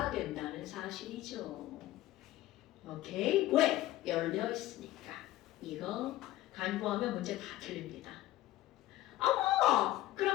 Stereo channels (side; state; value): right; quieter; 15.7 dB